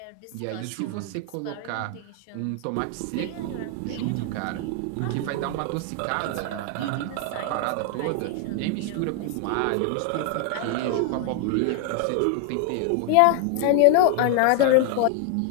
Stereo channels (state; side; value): different; both; correlation 0.00